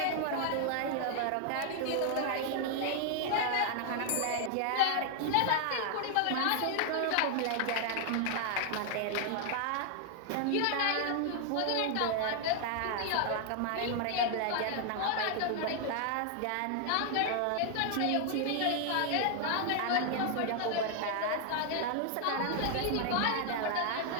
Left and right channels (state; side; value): different; both; correlation 0.00